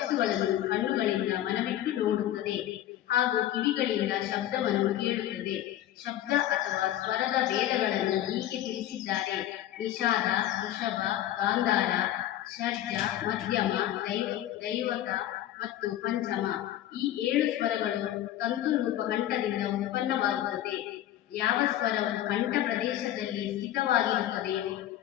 ಕಣ್ಣುಗಳಿಂದ ಮನವಿಟ್ಟು ನೋಡುತ್ತದೆ ಹಾಗೂ ಕಿವಿಗಳಿಂದ ಶಬ್ದವನ್ನು ಕೇಳುತ್ತದೆ. ಶಬ್ದ ಅಥವಾ ಸ್ವರದ ಭೇದಗಳನ್ನು ಹೀಗೆ ತಿಳಿಸಿದ್ದಾರೆ: ನಿಷಾದ, ವೃಷಭ, ಗಾಂಧಾರ, ಷಡ್ಜ, ಮಧ್ಯಮ, ದೈವತ ಮತ್ತು ಪಂಚಮ. ಈ 7 ಸ್ವರಗಳು ತಂತು ರೂಪ ಕಂಠದಿಂದ ಉತ್ಪನ್ನವಾಗುತ್ತದೆ. ಯಾವ ಸ್ವರವು ಕಂಠ ಪ್ರದೇಶದಲ್ಲಿ ಸ್ಥಿತವಾಗಿರುತ್ತದೆಯೋ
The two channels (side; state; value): right; quieter; 12.8 dB